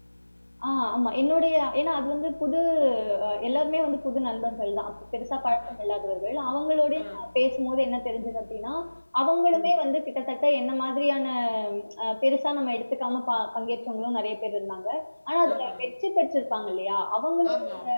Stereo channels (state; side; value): inverted; both; correlation -1.00